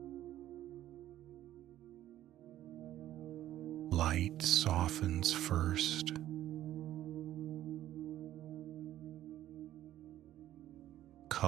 Light softens first.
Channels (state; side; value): quieter; left; 13.1 dB